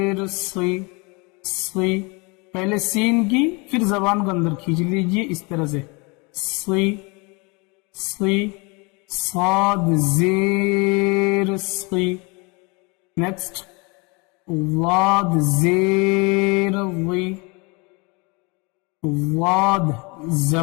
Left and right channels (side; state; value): right; quieter; 28.9 dB